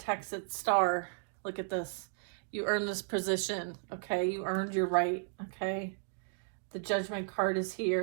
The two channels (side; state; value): left; silent; digital silence